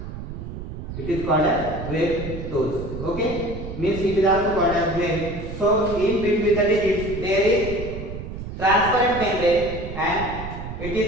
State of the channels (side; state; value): right; noise; rumble, 8 dB below the sound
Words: It is called as wave toes. Okay, means it is also called as wave. So in between the digits there is transparent membrane, and it